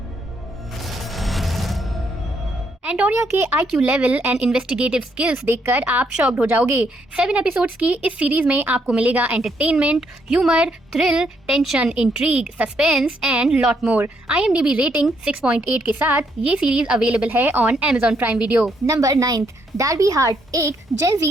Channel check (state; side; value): normal; both; correlation 0.74